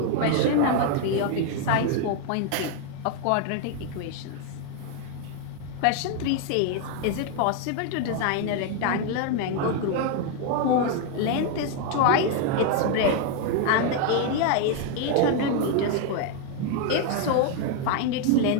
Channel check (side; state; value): both; different; correlation 0.01